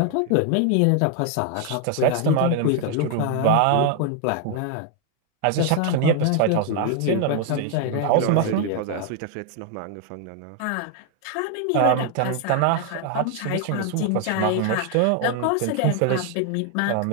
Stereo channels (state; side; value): different; both; correlation 0.00